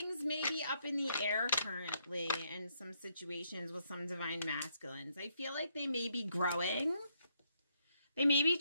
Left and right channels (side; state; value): both; inverted; correlation -0.75